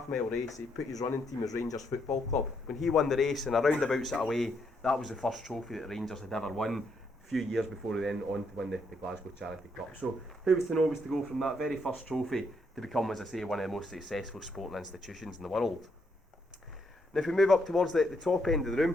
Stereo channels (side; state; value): both; normal; correlation 0.75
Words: race, he put his running team as Rangers Football Club. When he won the race in a roundabout sort of way, that was the first trophy that Rangers had ever won, a few years before he then on to win the Glasgow Charity Cup. So who was to know was to go from that very first trophy to become, as I say, one of the most successful sporting institutions in the world. Now if we move up towards the top end of the